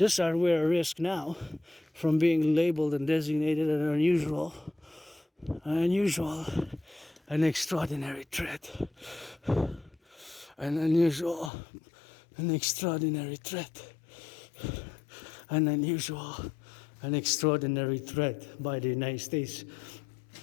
that we're at risk now from being labeled and designated an unusual, an extraordinary threat. An unusual, an extraordinary threat. An unusual, an extraordinary threat by the United States.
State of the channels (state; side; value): drops out; right; at 11.5 s